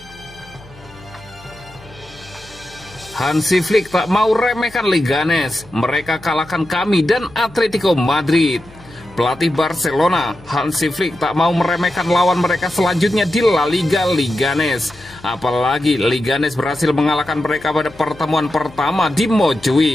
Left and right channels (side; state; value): left; noise; hum, 23 dB below the sound